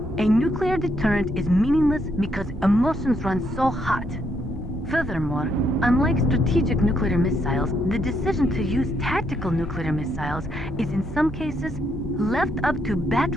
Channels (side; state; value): left; noise; hum, 16 dB below the sound